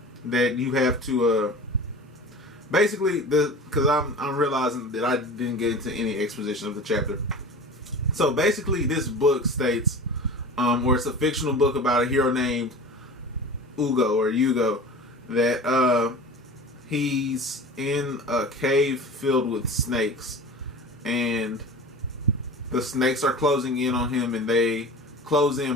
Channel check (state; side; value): normal; both; correlation 0.35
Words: that you have to, basically, because I'm realizing that I didn't get into any exposition of the chapter. So basically, this book states, or it's a fictional book about a hero named Hugo, that he's in a cave filled with snakes, and the snakes are closing in on him, and they close